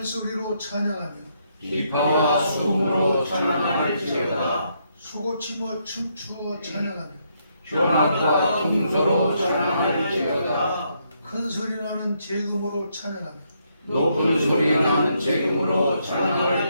소리로 찬양하며 기파와 수음으로 찬양할지어다. 수고치며 춤추어 찬양하며 현악과 풍소로 찬양할지어다. 큰 소리 나는 재금으로 찬양하며 높은 소리 나는 재금으로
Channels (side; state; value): both; inverted; correlation -0.76